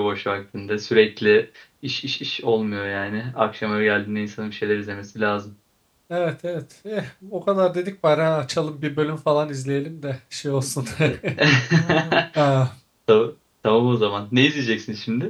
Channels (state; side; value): identical; both; correlation 1.00